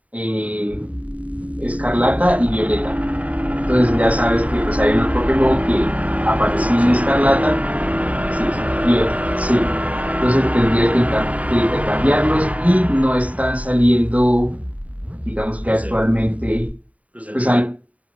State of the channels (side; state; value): left; late; 0.069 ms